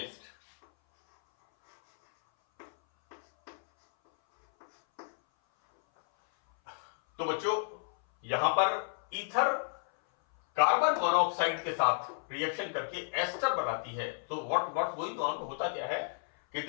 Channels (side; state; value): right; silent; 56 dB below the other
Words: तो बच्चों यहां पर ईथर कार्बन मोनोऑक्साइड के साथ रिएक्शन करके एस्टर बनाती है. तो व्हाट्स गोइंग ऑन, होता क्या है कि